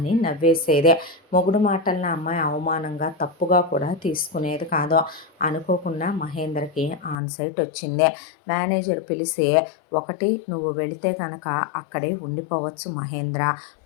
నవ్వేసేదే. మొగుడు మాటలను అమ్మాయి అవమానంగా తప్పుగా కూడా తీసుకునేది కాదు. అనుకోకుండా మహేంద్రకి ఆన్ సైట్ వచ్చిందే. మేనేజర్ పిలిచి, ఒకటి నువ్వు వెళితే కనుక అక్కడే ఉండిపోవచ్చు మహేంద్ర,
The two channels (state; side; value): drops out; right; at 7.2 s